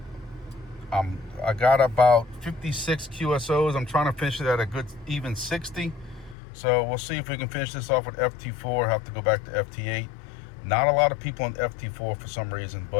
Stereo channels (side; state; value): right; drops out; at 6.4 s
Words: I got about 56 QSOs. I'm trying to finish it at a good even 60. So we'll see if we can finish this off with FT4. Have to go back to FT8. Not a lot of people on FT4 for some reason,